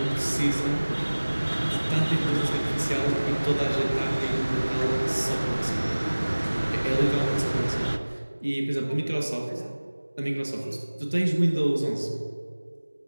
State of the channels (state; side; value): inverted; both; correlation -1.00